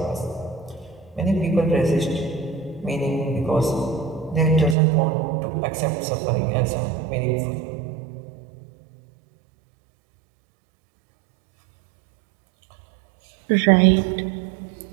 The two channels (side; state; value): left; drops out; at 4.8 s